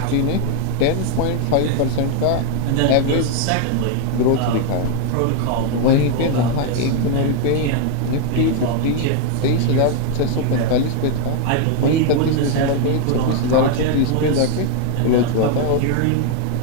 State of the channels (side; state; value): both; different; correlation 0.00